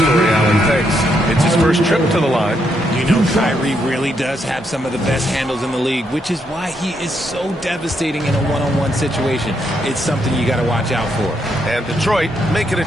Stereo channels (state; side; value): normal; both; correlation 0.77